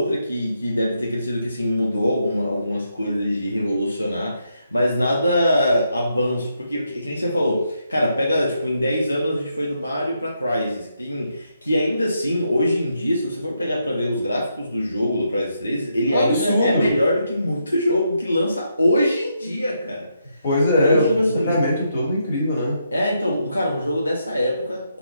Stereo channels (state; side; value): inverted; both; correlation -0.80